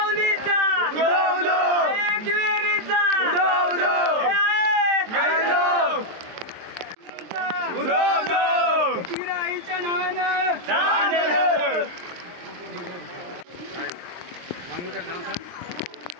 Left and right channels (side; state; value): left; late; 23 ms